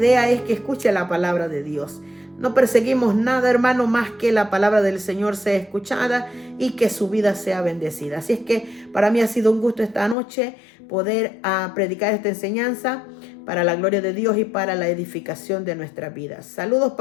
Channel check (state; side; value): drops out; right; at 10.2 s